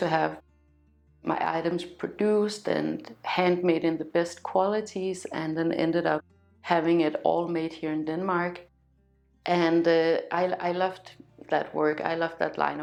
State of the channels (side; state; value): both; identical; correlation 1.00